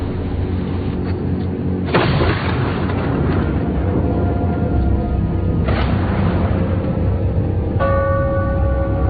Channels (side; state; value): both; identical; correlation 1.00